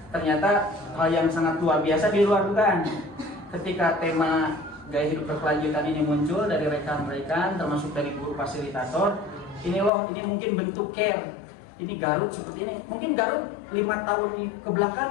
ternyata hal yang sangat luar biasa di luar dugaan. Ketika tema gaya hidup berkelanjutan ini muncul dari rekan-rekan termasuk dari guru fasilitator, ini mungkin bentuk care. Ini Garut seperti ini. Mungkin Garut 5 tahun ke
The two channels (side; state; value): right; drops out; at 9.9 s